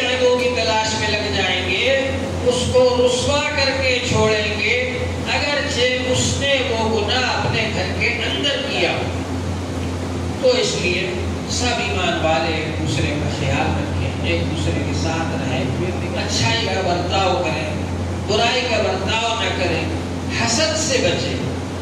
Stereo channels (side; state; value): both; identical; correlation 1.00